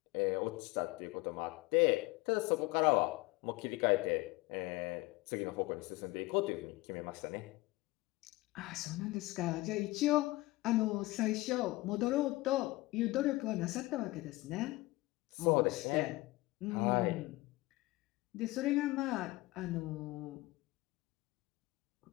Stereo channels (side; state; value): right; quieter; 20.5 dB